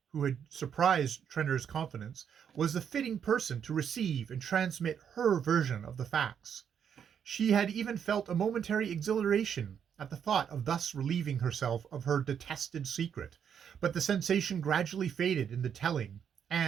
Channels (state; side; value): quieter; left; 8.1 dB